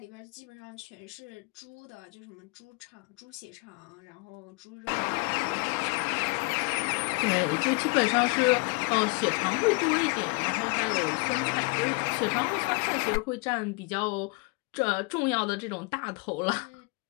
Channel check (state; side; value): quieter; right; 30.3 dB